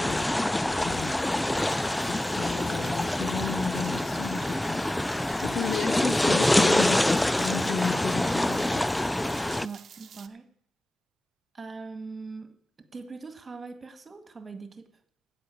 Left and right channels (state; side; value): normal; both; correlation 0.95